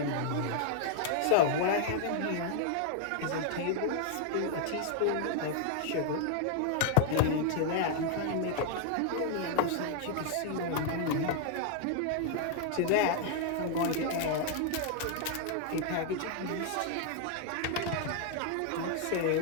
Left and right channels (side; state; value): both; different; correlation 0.00